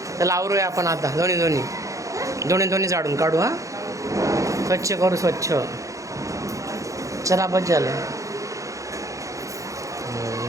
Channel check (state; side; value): late; left; 0.15 ms